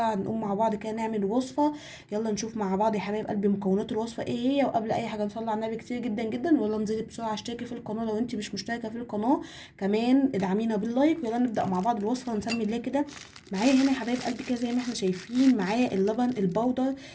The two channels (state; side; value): identical; both; correlation 1.00